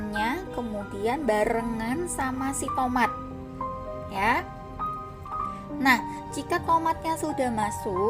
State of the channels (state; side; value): identical; both; correlation 1.00